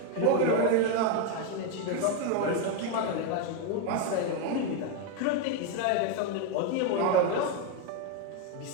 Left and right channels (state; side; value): different; both; correlation 0.02